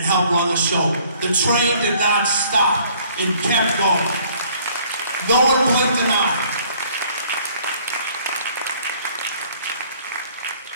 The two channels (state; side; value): inverted; both; correlation -0.59